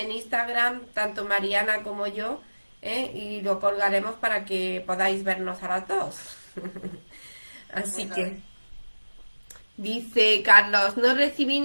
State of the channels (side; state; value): both; inverted; correlation -1.00